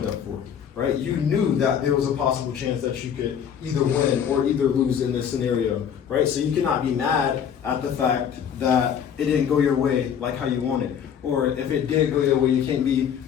up for, right? You knew that there was a possible chance that you could either win or either lose in this scenario, right? So you cannot be mad at the fact that it didn't go your way like how you wanted. Or if it did go your way, you can't be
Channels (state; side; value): quieter; right; 8.3 dB